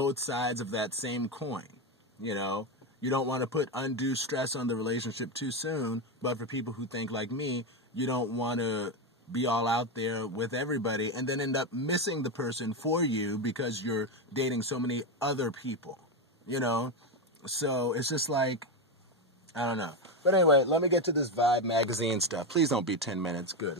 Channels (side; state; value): both; normal; correlation 0.11